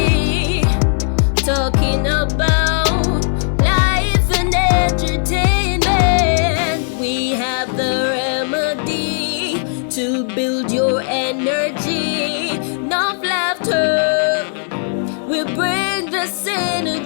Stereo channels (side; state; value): right; silent; 68 dB below the other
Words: talking about life and entertainment. We have the remedy to build your energy. Enough laughter will bring the